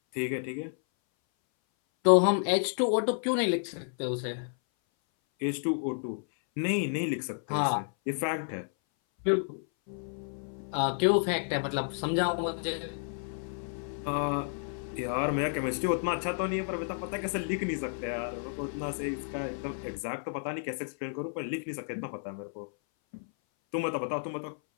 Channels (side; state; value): right; silent; 57 dB below the other